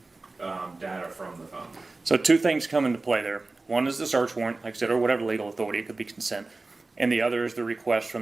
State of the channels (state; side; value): quieter; left; 3.4 dB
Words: data from the phone? So two things come into play there. One is the search warrant, like I said, or whatever legal authority. It could be consent. And the other is the request